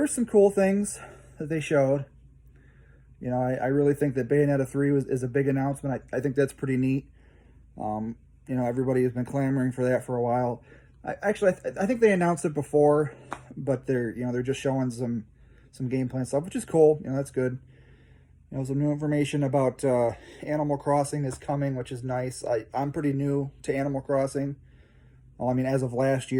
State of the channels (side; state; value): both; identical; correlation 1.00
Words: some cool things that they showed. I really think that Bayonetta 3 is a big announcement. I think that's pretty neat. Everybody has been clamoring for that for a while. I think they announced it before, but they're just showing some gameplay and stuff, which is cool. That's good. Some new information about Animal Crossing is coming, which is nice. I'm pretty new to Animal Crossing. Well, I mean, as of last